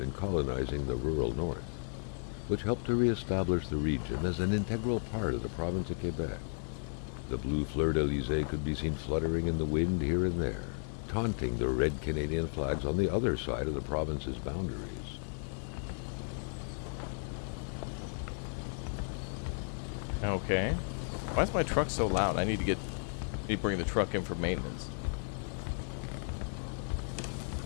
colonizing the rural north, which helped to reestablish the region as an integral part of the province of Quebec. The blue fleur-de-lis could be seen fluttering in the wind here and there, taunting the red Canadian flags on the other side of the province's boundaries. Okay. Why is my truck so loud? I need to bring the truck in for maintenance.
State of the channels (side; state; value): right; silent; 55 dB below the other